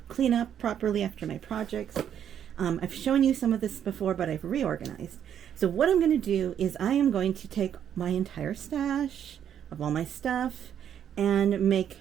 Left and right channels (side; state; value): left; quieter; 9.3 dB